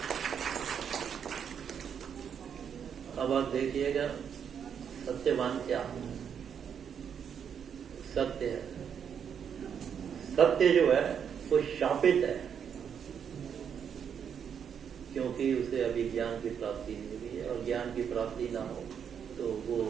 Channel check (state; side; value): quieter; left; 7.8 dB